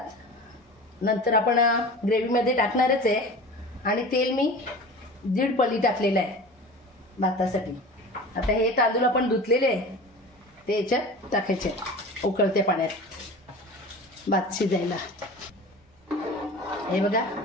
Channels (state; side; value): normal; both; correlation 0.36